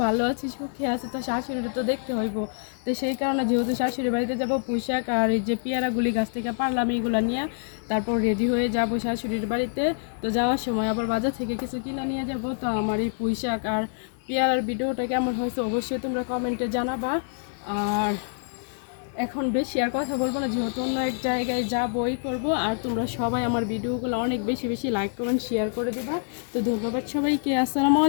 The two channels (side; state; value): right; silent; digital silence